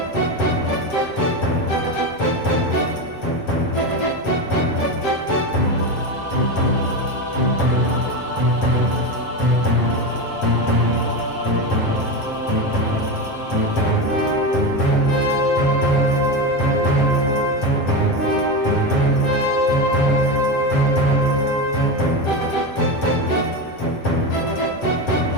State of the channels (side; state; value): right; late; 7.5 ms